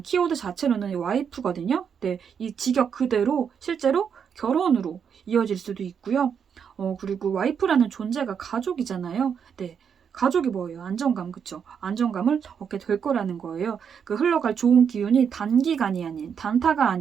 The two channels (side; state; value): left; quieter; 7.3 dB